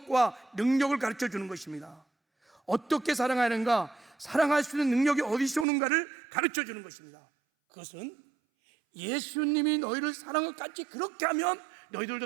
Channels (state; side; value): drops out; left; at 5.7 s